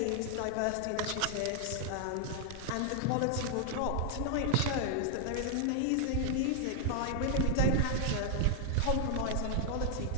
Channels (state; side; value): different; both; correlation 0.00